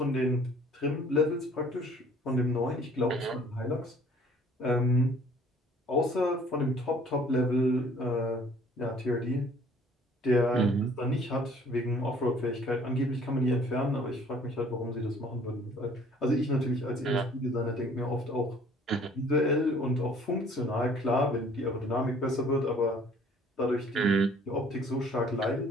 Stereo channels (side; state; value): both; normal; correlation 0.55